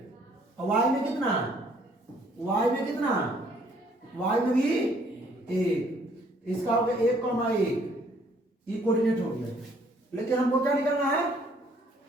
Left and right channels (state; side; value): normal; both; correlation 0.63